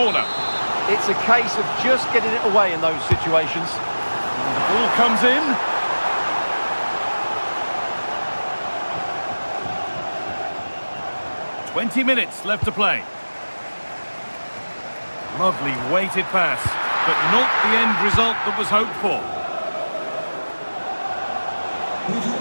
It's a case of just getting it away in those situations. And the ball comes in. "20 minutes left to play. Lovely weighted pass, but not the end result that was hoped for. We've had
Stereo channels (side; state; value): both; inverted; correlation -1.00